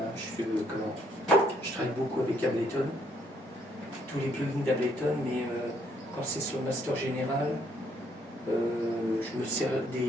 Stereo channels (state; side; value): normal; both; correlation 0.69